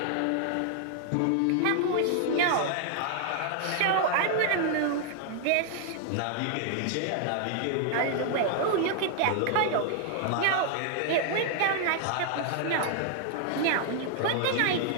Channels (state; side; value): different; both; correlation 0.00